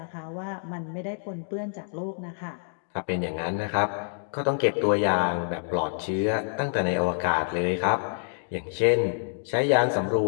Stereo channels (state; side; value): silent; right; digital silence